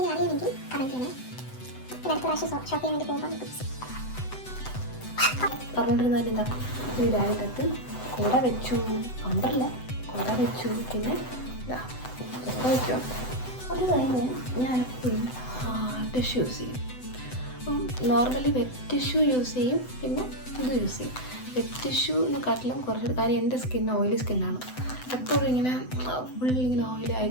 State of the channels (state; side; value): late; right; 7.9 ms